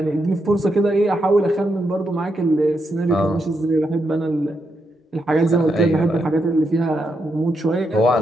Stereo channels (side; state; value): both; normal; correlation 0.82